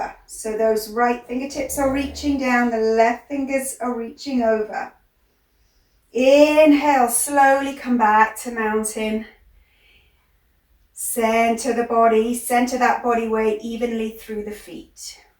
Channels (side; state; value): both; identical; correlation 1.00